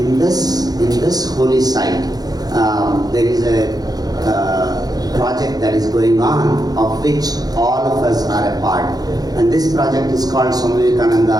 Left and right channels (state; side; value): late; left; 0.19 ms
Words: this holy site, there is a project that is going on, of which all of us are a part. And this project is called Swami